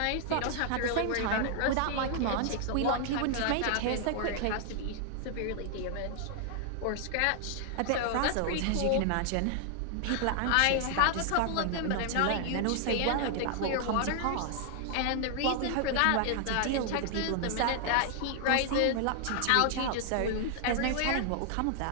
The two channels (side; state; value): both; different; correlation 0.00